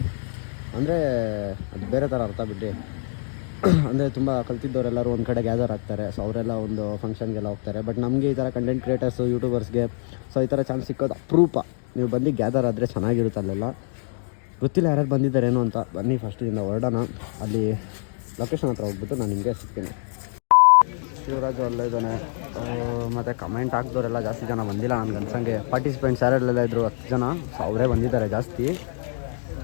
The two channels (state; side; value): silent; right; 59 dB below the other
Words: ಅಂದರೆ ಅದು ಬೇರೆ ಥರ ಅರ್ಥ ಬಿಡ್ರಿ. ಅಂದರೆ ತುಂಬ ಕಲ್ತಿದ್ದವರೆಲ್ಲರೂ ಒಂದು ಕಡೆ ಗ್ಯಾದರ್ ಆಗ್ತಾರೆ. ಸೊ ಅವರೆಲ್ಲ ಒಂದು ಫಂಕ್ಷನ್ಗೆಲ್ಲ ಹೋಗ್ತಾರೆ. ಬಟ್ ನಮಗೆ ಈ ಥರ ಕಂಟೆಂಟ್ ಕ್ರಿಯೇಟರ್ಸು, ಯೂಟ್ಯೂಬರ್ಸ್ಗೆ ಸೊ ಈ ಥರ ಚಾನ್ಸ್ ಸಿಕ್ಕೋದು ಅಪರೂಪ. ನೀವು ಬಂದು ಗ್ಯಾದರ್ ಆದರೆ ಚೆನ್ನಾಗಿರುತ್ತೆ. ಅಲ್ಲೆಲ್ಲ ಗೊತ್ತಿಲ್ಲ ಯಾರ್ಯಾರು ಬಂದಿದ್ದಾರೇನೋ ಅಂತ. ಬನ್ನಿ ಫಸ್ಟಿಂದ ಹೊರಡೋಣ. ಅಲ್ಲಿ ಲೊಕೇಶನ್ ಹತ್ರ ಹೋಗ್ಬಿಟ್ಟು ನಾನು ನಿಮಗೆ ಸಿಗ್ತೀನಿ. ಶಿವರಾಜು ಅಲ್ಲೇ ಇದ್ದಾನೆ. ಮತ್ತು ಕಮೆಂಟ್ ಹಾಕಿದವರೆಲ್ಲ ಜಾಸ್ತಿ ಜನ ಬಂದಿಲ್ಲ ನನಗೆ ಅನ್ಸಂಗೆ. ಪಾರ್ಟಿಸಿಪೆಂಟ್ಸ್ ಯಾರೆಲ್ಲ ಇದ್ದರು 10 ಜನ. ಸೊ ಅವರೇ ಬಂದಿದ್ದಾರೆ ಜಾಸ್ತಿ.